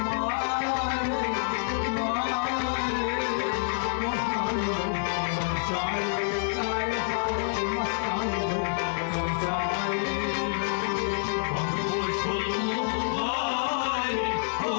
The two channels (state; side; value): silent; right; 60 dB below the other